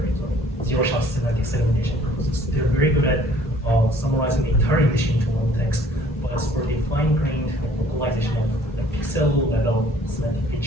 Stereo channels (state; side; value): normal; both; correlation 0.56